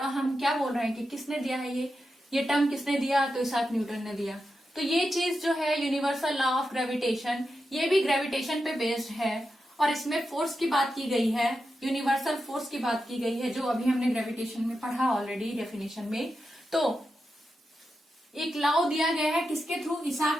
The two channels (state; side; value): normal; both; correlation 0.89